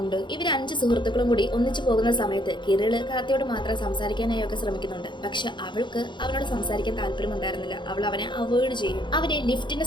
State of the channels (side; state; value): right; late; 0.23 ms